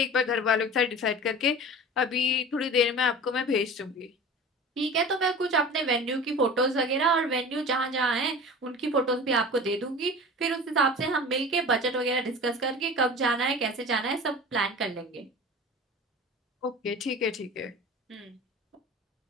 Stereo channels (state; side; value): normal; both; correlation 0.37